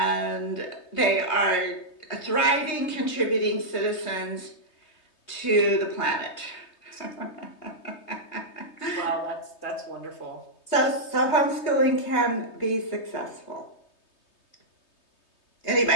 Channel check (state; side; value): late; right; 3.2 ms